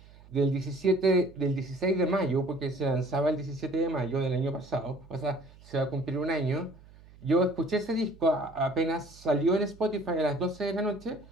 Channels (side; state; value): right; noise; hum, 23 dB below the sound